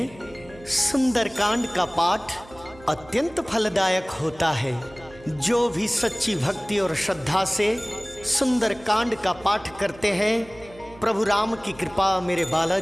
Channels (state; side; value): noise; right; hum, 22 dB below the sound